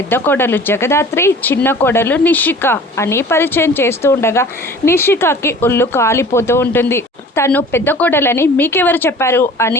కోడలు జగదాత్రి, చిన్న కోడలు నిషిక అని పరిచయం చేస్తూ ఉండగా నిషికకి ఒళ్ళు కాలిపోతూ ఉంటుంది. తను పెద్ద కోడలని మీకెవరు చెప్పారు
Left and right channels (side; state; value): both; normal; correlation 0.44